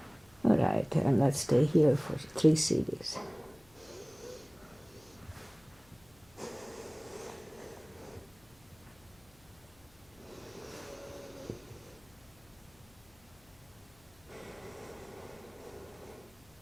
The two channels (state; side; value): noise; left; hum, 28 dB below the sound